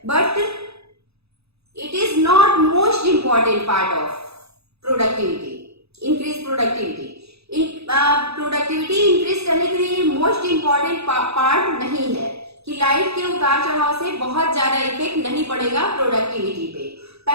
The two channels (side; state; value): left; late; 0.79 ms